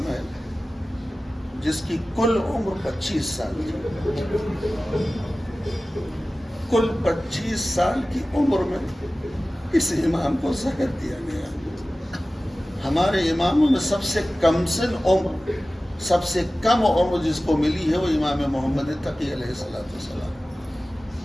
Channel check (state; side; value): normal; both; correlation 0.96